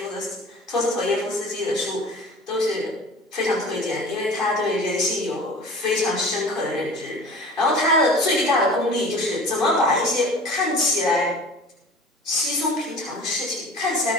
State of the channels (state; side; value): normal; both; correlation 0.41